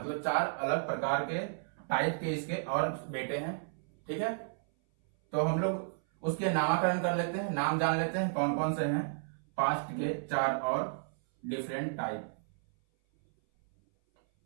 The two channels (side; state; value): left; silent; 56 dB below the other